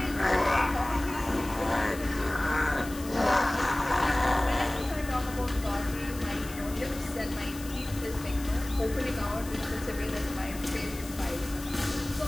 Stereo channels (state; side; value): noise; left; hiss, 15 dB below the sound